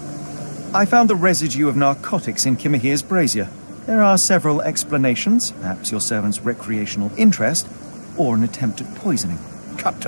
I found the residue of narcotics in Kimahir's brazier. There are several explanations, perhaps your servant's recreational interest, or an attempt at poisoning. Cut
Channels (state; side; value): inverted; both; correlation -1.00